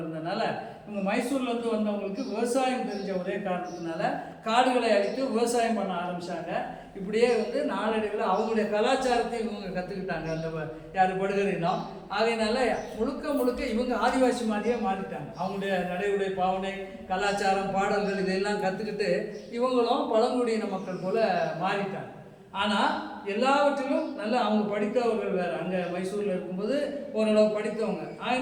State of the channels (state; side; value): identical; both; correlation 1.00